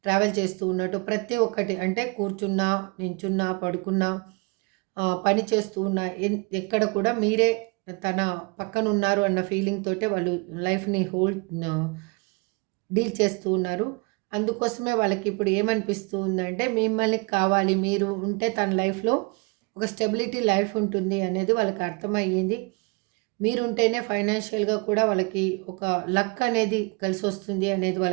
ట్రావెల్ చేస్తూ ఉన్నట్టు, ప్రతి ఒక్కటి అంటే కూర్చున్నా, నించున్నా, పడుకున్నా, పని చేస్తూ ఉన్నా, ఎక్కడ కూడా మీరే తన పక్కన ఉన్నారు అన్న ఫీలింగ్ తోటే వాళ్ళు లైఫ్ని డీల్ చేస్తూ ఉన్నారు. అందుకోసమే వాళ్ళకి ఇప్పుడు ఏమనిపిస్తూ ఉందంటే మిమ్మల్ని కావాలి, మీరు ఉంటే తన లైఫ్లో ఒక స్టెబిలిటీ లైఫ్ ఉంటుంది అనేది వాళ్ళకి అర్థమయ్యింది. మీరుంటేనే ఫైనాన్షియల్గా కూడా వాళ్ళకి ఒక లక్ అనేది కలిసి వస్తుంది అనేది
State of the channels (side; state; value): left; quieter; 29.9 dB